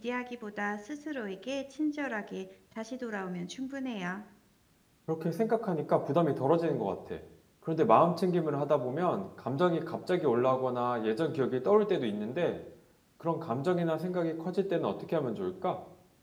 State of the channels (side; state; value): both; identical; correlation 1.00